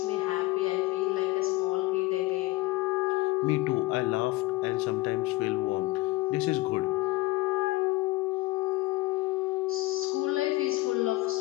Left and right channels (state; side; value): quieter; right; 19.8 dB